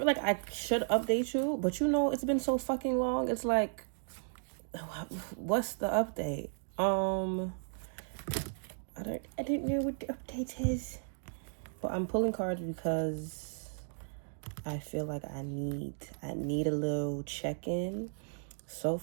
like I should update you, but it's been so fucking long. It's like, what's the update? I didn't know what the update is. But I'm pulling cards because I feel like I need a little check-in. So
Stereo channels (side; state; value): left; silent; digital silence